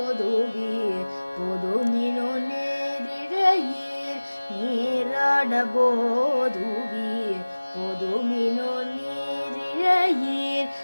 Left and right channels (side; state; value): both; inverted; correlation -1.00